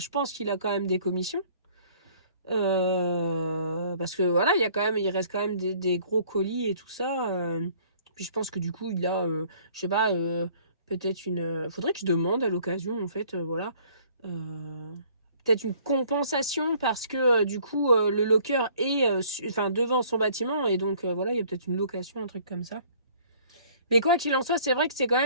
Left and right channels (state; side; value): inverted; both; correlation -0.56